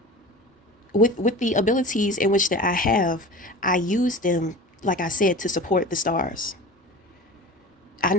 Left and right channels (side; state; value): both; normal; correlation 0.35